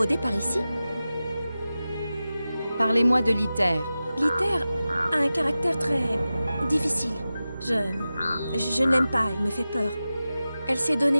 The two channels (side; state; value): both; inverted; correlation -0.94